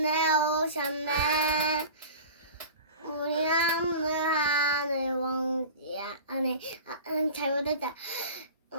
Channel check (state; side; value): inverted; both; correlation -0.37